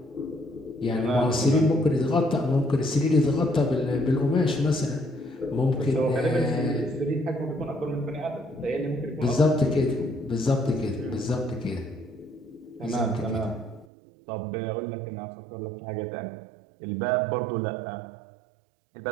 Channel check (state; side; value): drops out; left; at 13.9 s